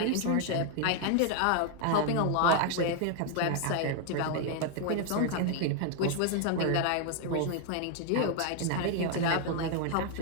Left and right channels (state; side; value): different; both; correlation 0.01